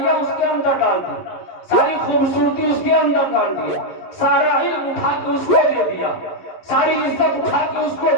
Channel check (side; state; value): right; late; 11 ms